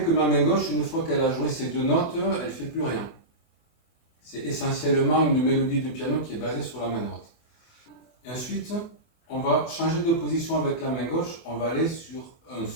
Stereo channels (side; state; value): right; late; 24 ms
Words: ma main gauche, une fois qu'elle a joué ces deux notes, elle ne fait plus rien. C'est essentiellement une mélodie de piano qui est basée sur la main droite. Et ensuite, on va changer de position avec la main gauche. On va aller sur un